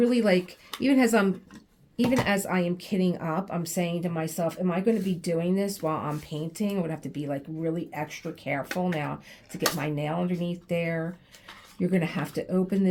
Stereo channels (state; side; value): identical; both; correlation 1.00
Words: like, even as I am kitting up, I'm saying to myself, am I going to be doing this while I'm painting? I would have to be like really extra careful now to get my nail underneath there. You're going to have to open